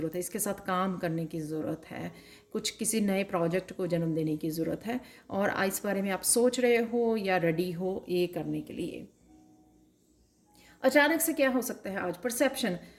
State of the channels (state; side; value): identical; both; correlation 1.00